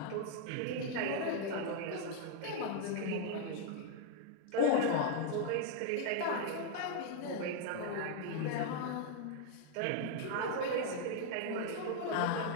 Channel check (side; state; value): both; different; correlation 0.00